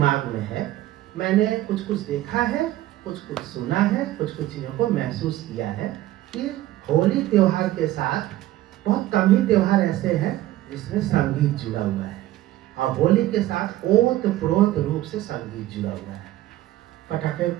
में है, मैंने कुछ कुछ देखा है, कुछ कुछ सुना है, कुछ कुछ चीज़ों को महसूस किया है कि होली त्योहार के साथ बहुत कम ही त्योहार ऐसे हैं जिसमें संगीत जुड़ा हुआ है, और होली के साथ ओतप्रोत रूप से संगीत जुड़ा हुआ है। पटाखे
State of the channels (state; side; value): quieter; left; 15.0 dB